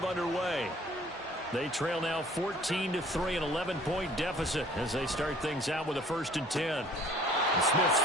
underway. They trail now 14-3, an 11-point deficit as they start things out with a 1st and 10. And Smith's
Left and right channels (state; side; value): normal; both; correlation 0.53